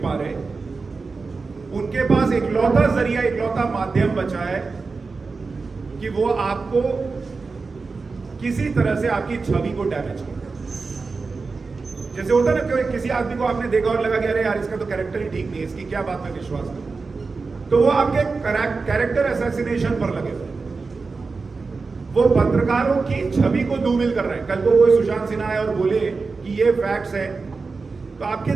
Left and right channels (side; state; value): left; quieter; 4.3 dB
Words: पा रहे, उनके पास इकलौता जरिया, इकलौता माध्यम बचा है कि वो आपको किसी तरह से आपकी छवि को डैमेज करे। जैसे होता है ना कि किसी आदमी को आपने देखा और लगा कि अरे यार इसका तो कैरेक्टर ही ठीक नहीं है, इसकी क्या बात में विश्वास करूं, तो वो आपके कैरेक्टर असैसिनेशन पर लगे हुए, वो पत्रकारों की छवि को धूमिल कर रहे हैं। कल को कोई सुशांत सिन्हा आए और बोले कि ये फैक्ट्स है, तो आपके